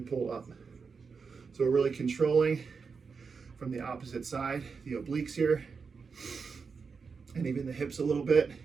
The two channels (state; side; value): quieter; left; 5.3 dB